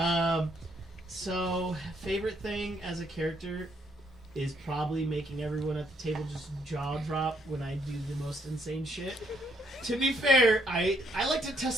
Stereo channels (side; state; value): both; normal; correlation 0.71